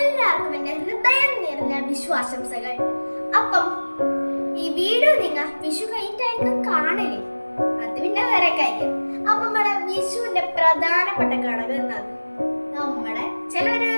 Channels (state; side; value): inverted; both; correlation -1.00